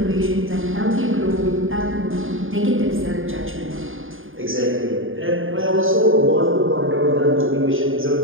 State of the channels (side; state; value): left; late; 0.59 ms